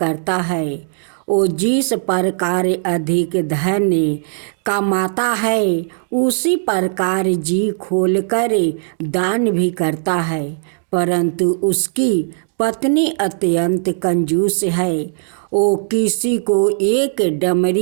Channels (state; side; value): silent; left; digital silence